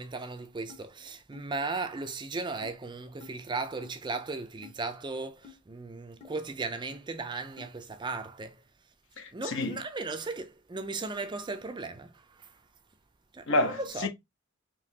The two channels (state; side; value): normal; both; correlation -0.03